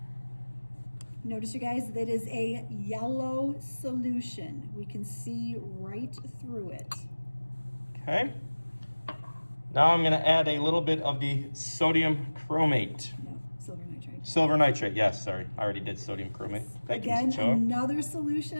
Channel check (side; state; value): both; inverted; correlation -1.00